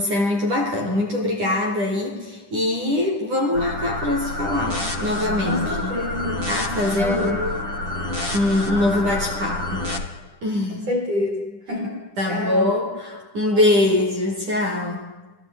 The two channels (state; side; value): late; left; 10 ms